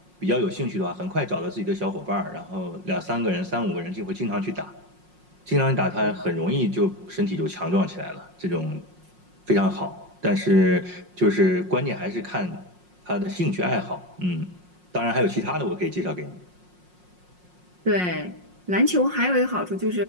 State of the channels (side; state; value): left; late; 5.5 ms